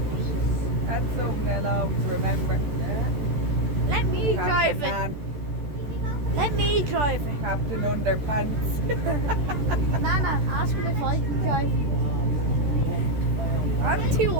That's something they'll always remember. Let me drive Captain it. Man, Let me drive it. Captain Underpants. Nana, ask him if I can drive. I'm too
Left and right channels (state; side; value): late; left; 14 ms